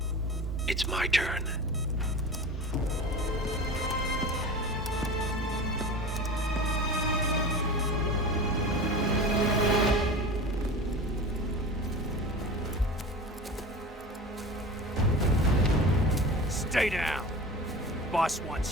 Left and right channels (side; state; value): both; normal; correlation 0.33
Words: it's my turn. Stay down. Boss